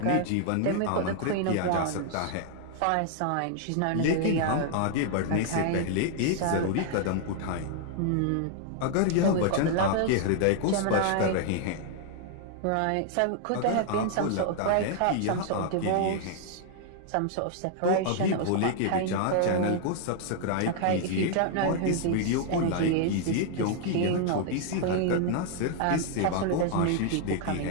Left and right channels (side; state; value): both; different; correlation 0.00